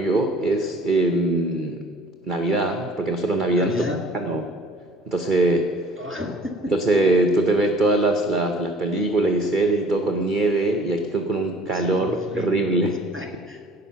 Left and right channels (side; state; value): both; normal; correlation 0.51